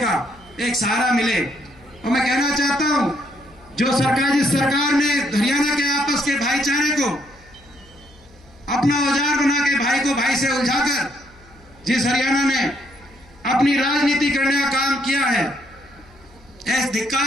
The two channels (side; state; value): left; noise; hum, 27 dB below the sound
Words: एक सहारा मिले। और मैं कहना चाहता हूं जिस सरकार ने हरियाणा के आपस के भाईचारे को अपना औजार बना के भाई से उलझाकर जिस हरियाणा ने अपनी राजनीति करने का काम किया है, ऐसे धिक्कार